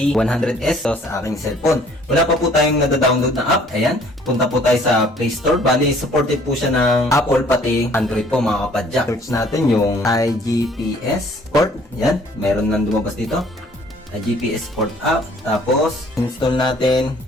sa aking cellphone. Wala pa po tayong nada-download na app. Ayan, punta po tayo sa Play Store. Bali, supported po siya ng Apple pati Android po mga kapadyak. Search natin yung iGPS port. Yan, meron nang lumabas dito. iGPS port app. Tapos, install natin.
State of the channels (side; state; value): both; normal; correlation 0.58